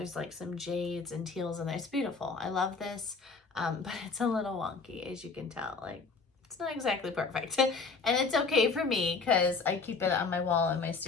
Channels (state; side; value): quieter; right; 4.5 dB